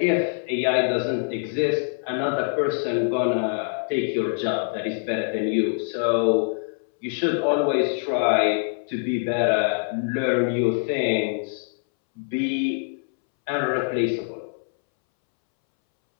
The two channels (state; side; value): silent; right; 62 dB below the other